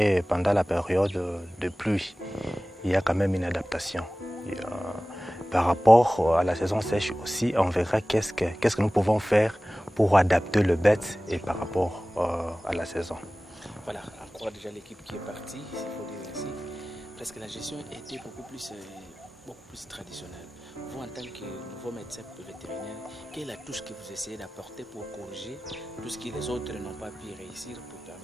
pendant la période de pluie. Il y a quand même une adaptation. Par rapport à la saison sèche aussi, on verra qu'est-ce que nous pouvons faire pour adapter le bête et par rapport à la saison. Voilà, encore déjà l'équipe qui est partie, il faut dire ainsi. Parce que la gestion était beaucoup plus traditionnelle. Vous, en tant que nouveau médecin vétérinaire, quelle est la touche que vous essayez d'apporter pour corriger tout ce que les autres n'ont pas pu réussir pour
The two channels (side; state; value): both; normal; correlation 0.97